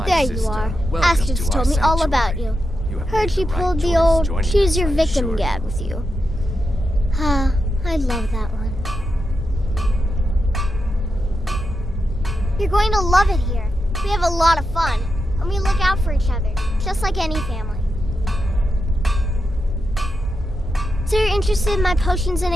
there sister. You are. Welcome Astrid's to our told me all sanctuary. about you. You Heard she pulled the old choose your victim gad with you. Ah, I love that one. You're going to love it here. We have a lot of fun, and we look out for each other, just like any family. So you're interested in my potions and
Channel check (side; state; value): both; normal; correlation 0.87